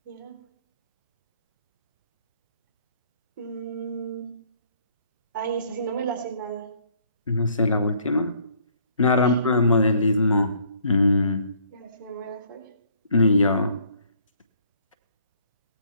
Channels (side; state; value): both; inverted; correlation -0.62